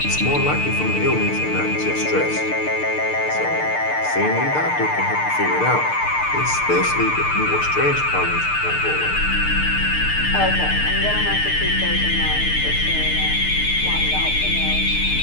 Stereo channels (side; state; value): right; late; 6.7 ms